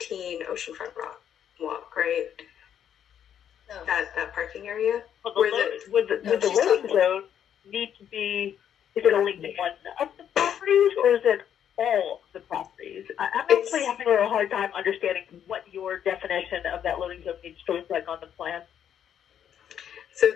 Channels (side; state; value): right; quieter; 9.3 dB